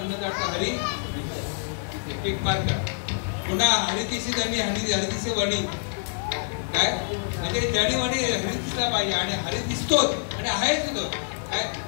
हरी एक मार्ग पुन्हा हरितिशी धनी हरितिशी वणी काय म्हणजे जडी वणी हरी दिसला पाहिजे आणि हरी दिसतोच आणि आहेच होतो काय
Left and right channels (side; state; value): right; silent; digital silence